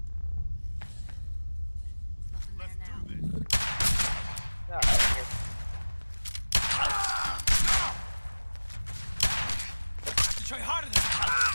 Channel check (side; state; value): both; inverted; correlation -1.00